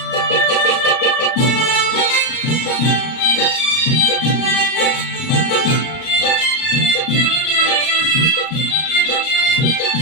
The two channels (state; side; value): late; right; 38 ms